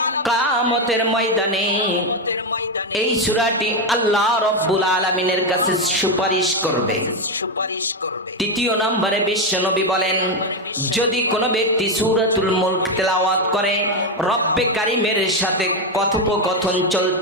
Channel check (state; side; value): normal; both; correlation 0.08